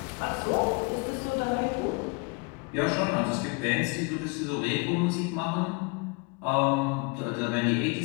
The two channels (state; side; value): quieter; right; 30.1 dB